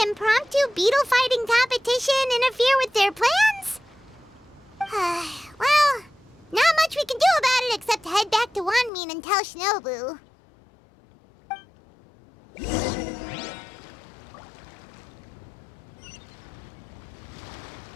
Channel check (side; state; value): right; drops out; at 8.9 s